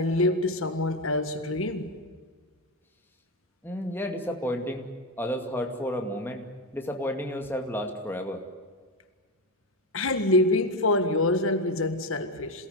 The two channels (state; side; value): normal; both; correlation 0.13